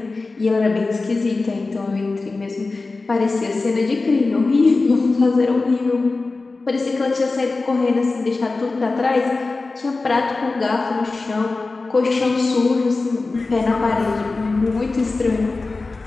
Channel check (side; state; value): right; quieter; 3.6 dB